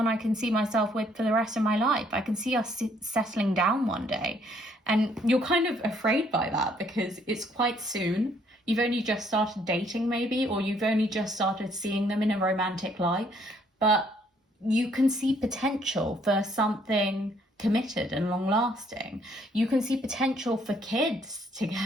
I can see myself with for the rest of my life. I can see us settling down one day. And you're kind of afraid by that because it's quite soon. You've only just started dating maybe, or you've only just started seeing them in a romantic light. But you can see potential for something committed and long lasting. You can see potential for kids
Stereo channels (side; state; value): both; normal; correlation 0.66